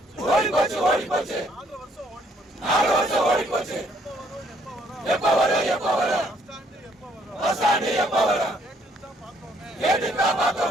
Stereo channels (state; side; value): normal; both; correlation 0.66